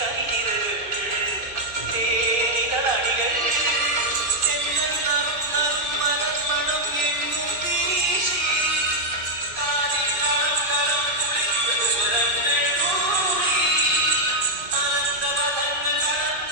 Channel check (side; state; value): left; late; 2.5 ms